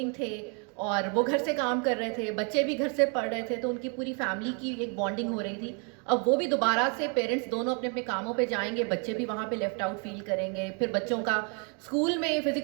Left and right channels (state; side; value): quieter; left; 37.2 dB